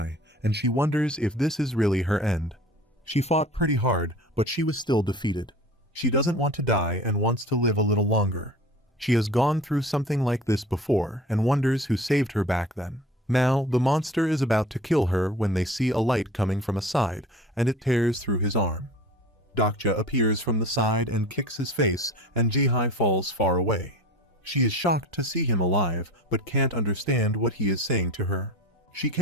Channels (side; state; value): both; normal; correlation 0.40